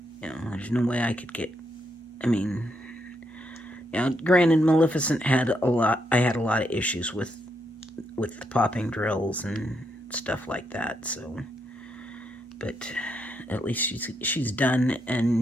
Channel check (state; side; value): normal; both; correlation 0.79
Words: there's no way I could get, granted, Maleficent had I had a lot of issues with the popping drills and stuff like that. So, but at least she's done,